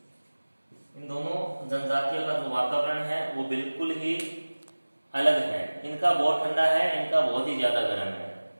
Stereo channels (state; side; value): inverted; both; correlation -1.00